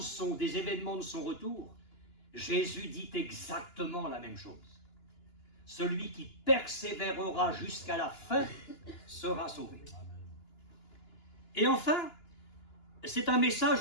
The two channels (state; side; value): late; right; 2.9 ms